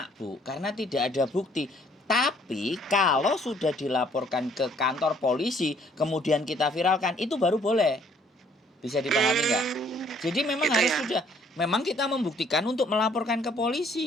Bu, karena tidak ada bukti. Tapi kalau sudah dilaporkan ke kantor polisi, kemudian kita viralkan, itu baru boleh. Bisa dipahami nggak? Jadi memang Gitu harus ya. sudah, memang kita membuktikan untuk melaporkan ke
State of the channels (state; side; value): normal; both; correlation 0.62